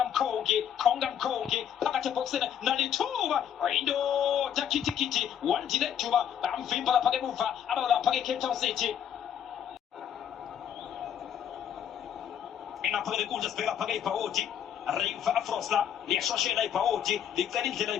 Kongi, Pakate Boxen, Nalituba, Rindo, Takiti, one Dilectuba, Amfimba Pagamufa, about Pagi Cape Town City. Engapagade Usha, Spela Pagay Paoti, Riva Afrosla, the Shoshela Paoti, the Canintela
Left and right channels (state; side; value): quieter; right; 9.3 dB